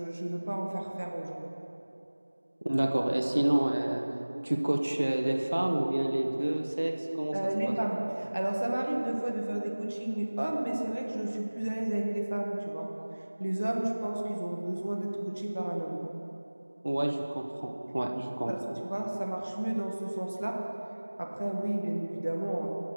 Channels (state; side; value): inverted; both; correlation -1.00